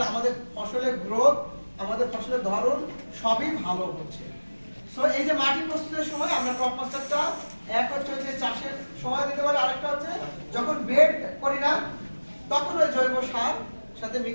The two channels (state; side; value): inverted; both; correlation -1.00